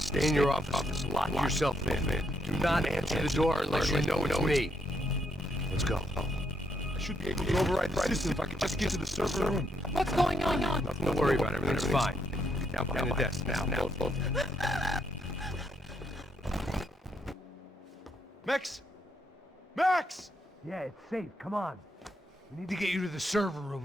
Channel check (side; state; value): both; normal; correlation 0.76